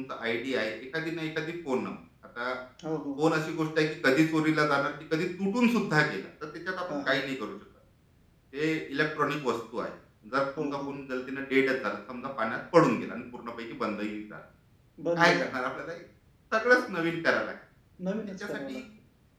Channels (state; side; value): identical; both; correlation 1.00